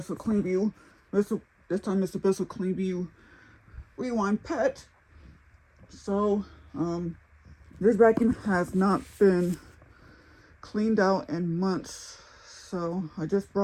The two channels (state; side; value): identical; both; correlation 1.00